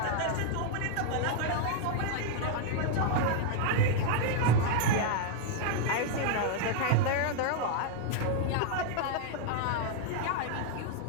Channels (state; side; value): different; both; correlation 0.00